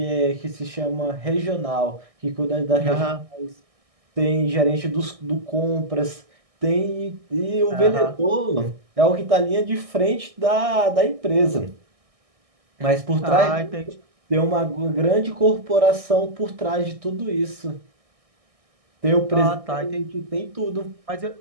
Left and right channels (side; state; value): left; late; 1.6 ms